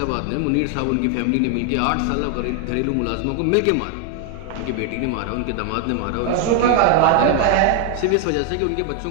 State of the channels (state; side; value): different; both; correlation 0.00